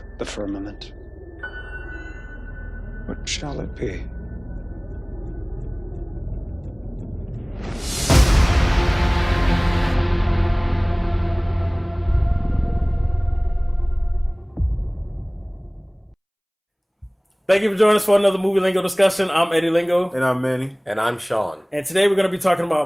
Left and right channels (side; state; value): both; identical; correlation 1.00